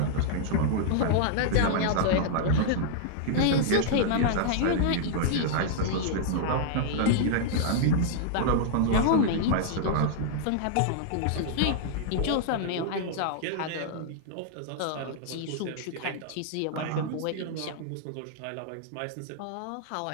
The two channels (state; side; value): different; both; correlation -0.01